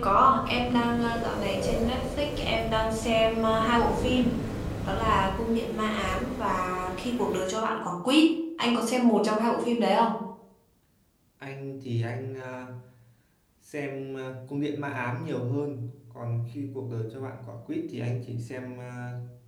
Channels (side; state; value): both; identical; correlation 1.00